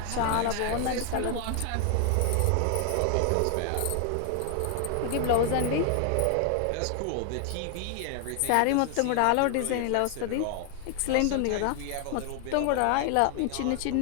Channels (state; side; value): different; both; correlation 0.00